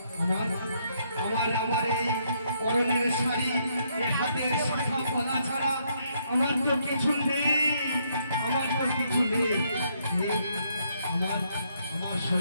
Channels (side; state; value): both; inverted; correlation -0.73